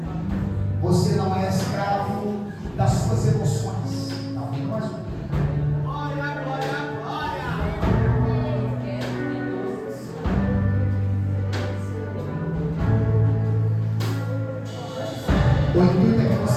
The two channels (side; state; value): both; identical; correlation 1.00